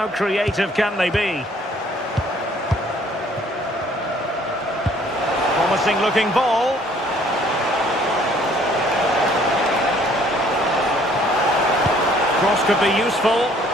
creative can they be? Promising looking ball. Cross could be useful.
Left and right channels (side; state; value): both; normal; correlation 0.59